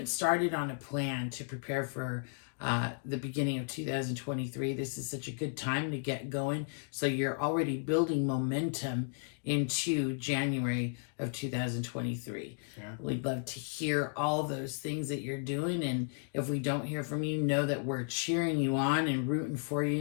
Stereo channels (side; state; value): right; silent; 55 dB below the other